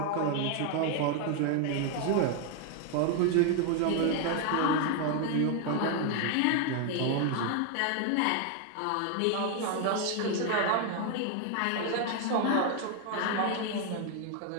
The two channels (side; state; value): both; different; correlation 0.01